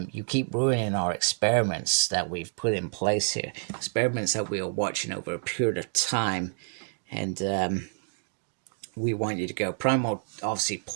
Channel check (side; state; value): left; silent; digital silence